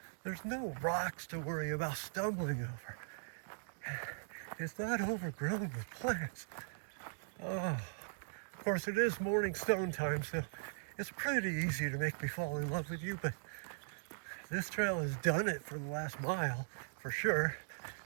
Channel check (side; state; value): left; silent; digital silence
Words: There's no rocks to worry about stumbling over. It's not overgrown with plants. Oh, of course it is morning stone time, so it's pretty easy to make me fall in love with you, but this trail has done it for the last mile, for sure.